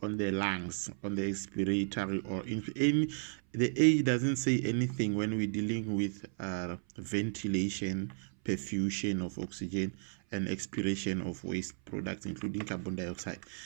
lungs, on the expiratory, or in any, the age doesn't say anything when we're dealing with ventilation, perfusion of oxygen, and expiration of waste products, including carbon dioxide.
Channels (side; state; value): left; silent; 55 dB below the other